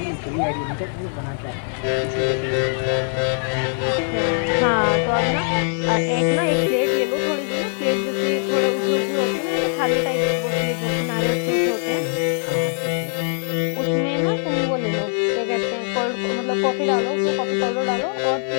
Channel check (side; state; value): right; silent; 60 dB below the other